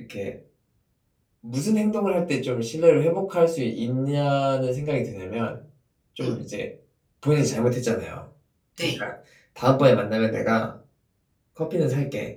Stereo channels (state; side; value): identical; both; correlation 1.00